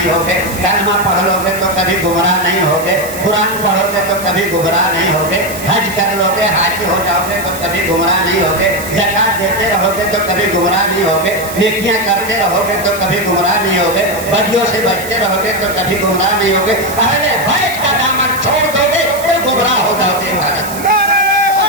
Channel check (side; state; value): right; noise; hiss, 12 dB below the sound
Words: ہوگے، کلمہ پڑھ لو گے تو کبھی گمراہ نہیں ہوگے، قرآن پڑھو گے تو کبھی گمراہ نہیں ہوگے، حج کر لو گے، حاجی ہو جاؤ گے تو کبھی گمراہ نہیں ہوگے، زکات دیتے رہو گے تو کبھی گمراہ نہیں ہوگے، نیکیاں کرتے رہو گے تو کبھی گمراہ نہیں ہوگے، بدیوں سے بچتے رہو گے تو کبھی گمراہ نہیں ہوگے، اہل بیت کا دامن چھوڑ دو گے تو گمراہ ہو جاؤ گے۔